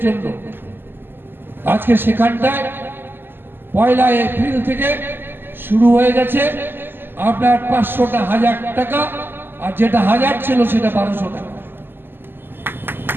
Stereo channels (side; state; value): left; late; 0.098 ms